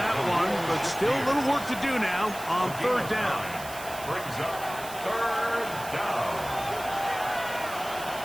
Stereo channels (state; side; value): noise; right; hiss, 13 dB below the sound